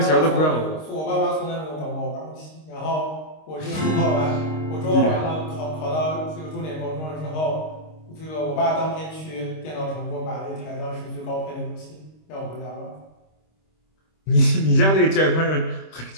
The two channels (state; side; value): late; right; 26 ms